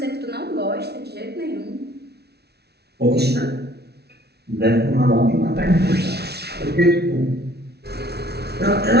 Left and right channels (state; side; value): late; left; 0.48 ms